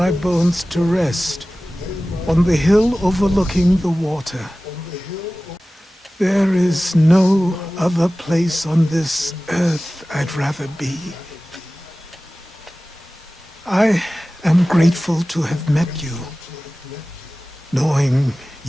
bones to rest on the hill overlooking the water. There is no other place on this earth I'd rather be. I am grateful to have met you, knowing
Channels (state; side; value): normal; both; correlation 0.97